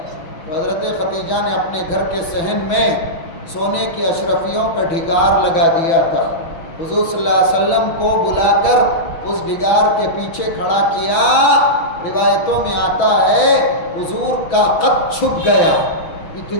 تو حضرت خدیجہ نے اپنے گھر کے صحن میں سونے کی اشرفیوں کا ڈھگار لگا دیا تھا. حضور صلی اللہ علیہ وسلم کو بلا کر اس ڈھگار کے پیچھے کھڑا کیا. روایتوں میں آتا ہے حضور کا قد چھپ گیا.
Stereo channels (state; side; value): late; right; 6.1 ms